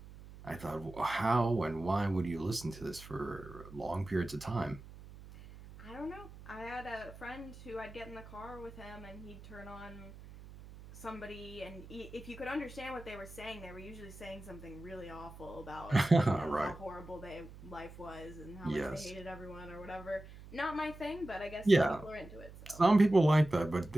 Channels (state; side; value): noise; right; hum, 16 dB below the sound